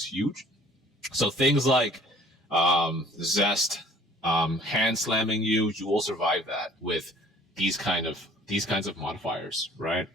huge. So things like Zest, hand slamming you will survive that with these kinds of modifiers, right?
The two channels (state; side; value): normal; both; correlation 0.53